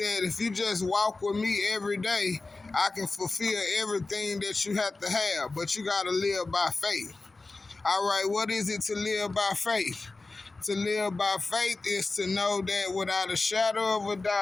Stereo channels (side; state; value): right; quieter; 3.5 dB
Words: if you just walk with me every day, I can fulfill everything that you have to have, but you got to live by faith. All right, what is it to live by faith? To live by faith is to know that without a shadow of a